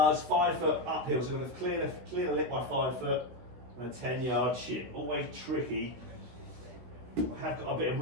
5 foot uphill, so we've clear the lip by 5 foot and a 10-yard chip. Always tricky. I have got a bit of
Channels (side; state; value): left; late; 17 ms